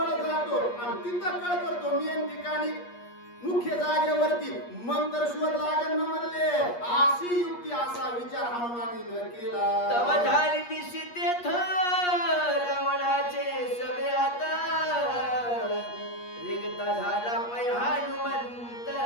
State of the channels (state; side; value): late; right; 8.4 ms